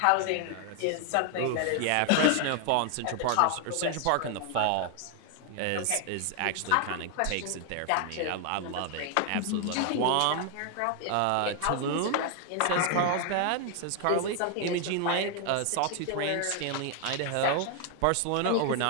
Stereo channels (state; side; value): different; both; correlation 0.00